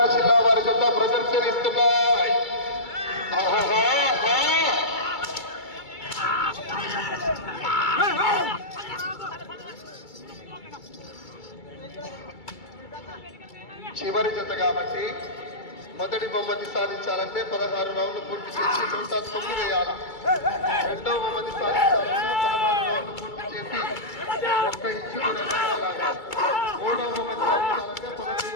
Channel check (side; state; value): right; late; 2.3 ms